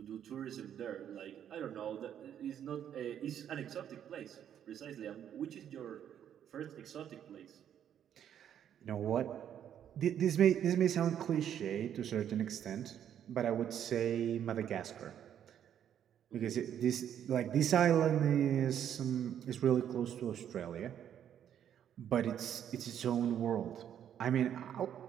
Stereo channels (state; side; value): quieter; left; 9.6 dB